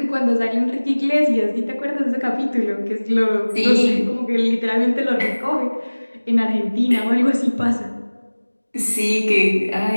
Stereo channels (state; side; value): inverted; both; correlation -1.00